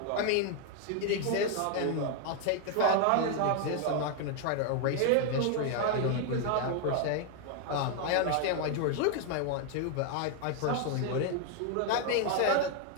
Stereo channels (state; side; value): different; both; correlation 0.00